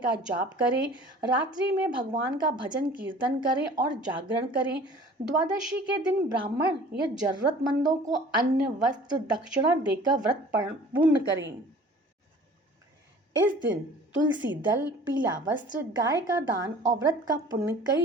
जाप करें। रात्रि में भगवान का भजन कीर्तन करें और जागरण करें। द्वादशी के दिन ब्राह्मण या जरूरतमंदों को अन्न, वस्त्र, दक्षिणा देकर व्रत पूर्ण करें। इस दिन तुलसी दल, पीला वस्त्र, गाय का दान और व्रत का पुण्य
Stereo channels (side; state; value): both; normal; correlation 0.47